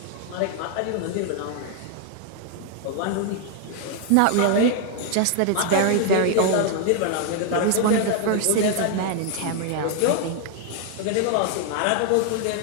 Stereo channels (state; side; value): different; both; correlation 0.00